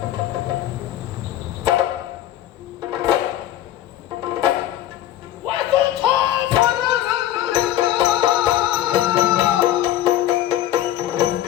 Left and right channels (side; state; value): right; quieter; 12.7 dB